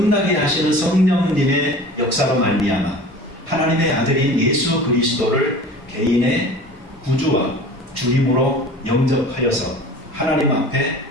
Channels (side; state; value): both; normal; correlation 0.41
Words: 하시는 성령님의 역사로 말미암아 하나님의 아들인 예수 그리스도를 개인의 구주와 주님으로 영접하여서 하나님 앞에